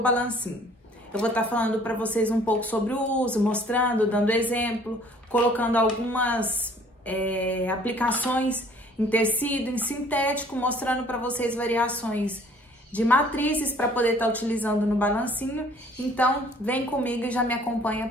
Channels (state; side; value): normal; both; correlation 0.55